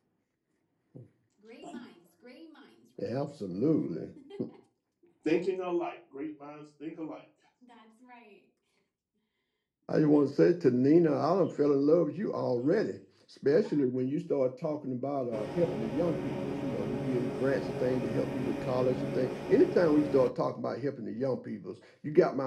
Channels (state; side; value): identical; both; correlation 1.00